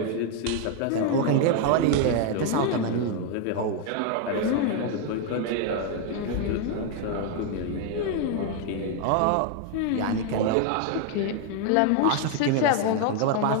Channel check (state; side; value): different; both; correlation 0.01